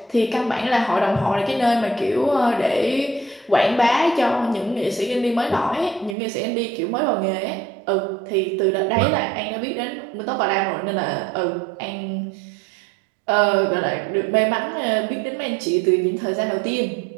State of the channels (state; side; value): drops out; left; at 6.2 s